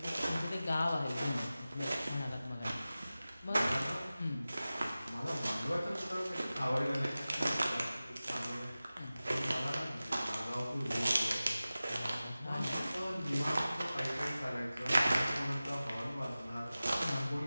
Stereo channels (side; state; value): both; inverted; correlation -0.96